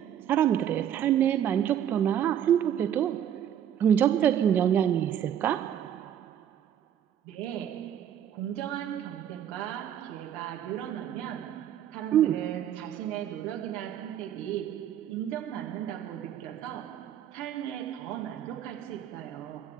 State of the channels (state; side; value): quieter; left; 9.9 dB